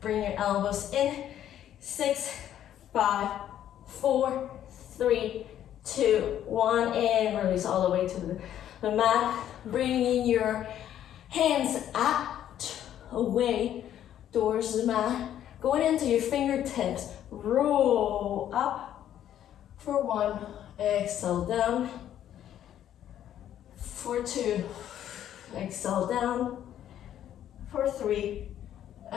your elbows in. 6, 5, 4, 3, 2, 1. And release all the way to the mat. Bringing your hands out, away, towards the mat. Going into your fingertips. Roll up for 1. Exhale down. For 2. Exhale down. For 3.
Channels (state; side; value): quieter; right; 11.0 dB